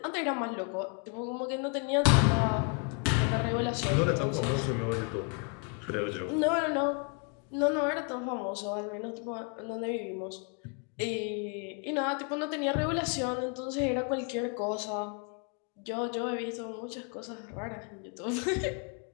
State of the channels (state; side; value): quieter; right; 37.8 dB